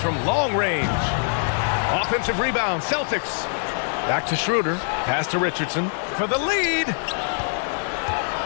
long range. Offensive rebound, Celtics. Back to Schroeder. Pass to Richardson for the lead.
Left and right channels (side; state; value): right; silent; digital silence